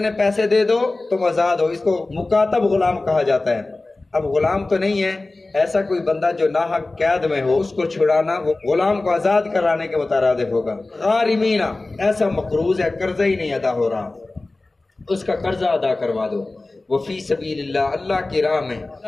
پیسے دے دو تم آزاد ہو، اس کو مکاتب غلام کہا جاتا ہے۔ اب غلام تو نہیں ہے، ایسا کوئی بندہ جو ناحق قید میں ہو اس کو چھڑانا وہ غلام کو آزاد کرانے کے مترادف ہوگا۔ غارمین، ایسا مقروض ہے قرضہ ہی نہیں ادا ہو رہا، اس کا قرضہ ادا کروا دو۔ وفی سبیل اللہ، اللہ کی راہ میں،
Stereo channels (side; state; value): right; quieter; 3.1 dB